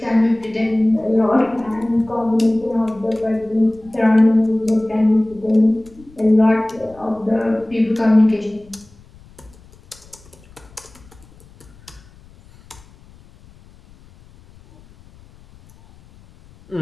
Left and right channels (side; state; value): left; noise; rumble, 25 dB below the sound